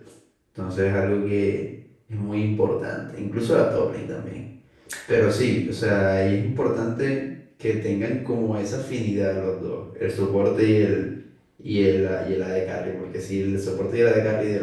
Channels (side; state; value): both; identical; correlation 1.00